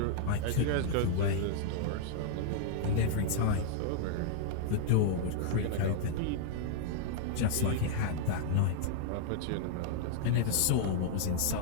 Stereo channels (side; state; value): both; different; correlation -0.01